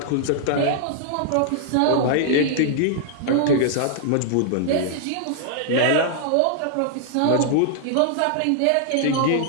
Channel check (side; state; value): both; different; correlation -0.01